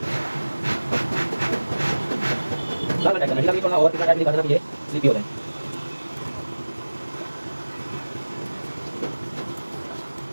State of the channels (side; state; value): both; inverted; correlation -1.00